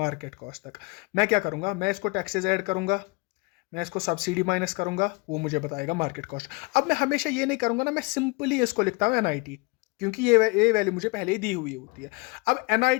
कॉस्ट तक, मैं क्या करूंगा, मैं इसको टैक्सेस ऐड करूंगा, मैं इसको सब्सिडी माइनस करूंगा, वो मुझे बताएगा मार्केट कॉस्ट। अब मैं हमेशा ये नहीं करूंगा ना, मैं सिंपली इसको लिखता हूं एनआईटी, क्योंकि ये वैल्यू मुझे पहले ही दी हुई होती है। अब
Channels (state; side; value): quieter; right; 27.4 dB